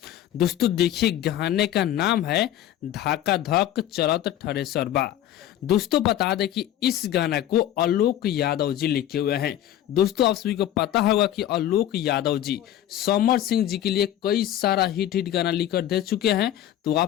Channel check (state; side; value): quieter; right; 12.0 dB